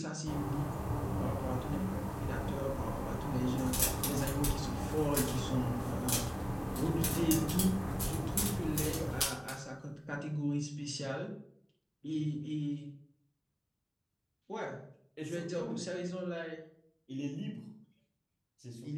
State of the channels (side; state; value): both; identical; correlation 1.00